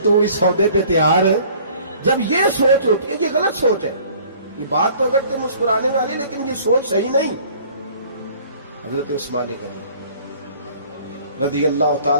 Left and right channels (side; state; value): both; inverted; correlation -0.53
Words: تو اس سودے پہ تیار ہے۔ جب یہ سوچ ہوتی ہے، یہ غلط سوچ ہے، یہ بات تو اگر تے مسکرانے والی، لیکن یہ سوچ صحیح نہیں۔ حضرت عثمان غنی رضی اللہ